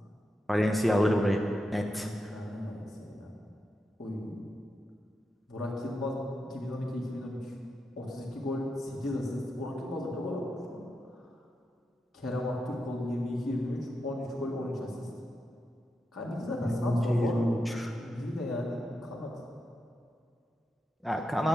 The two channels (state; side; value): normal; both; correlation 0.87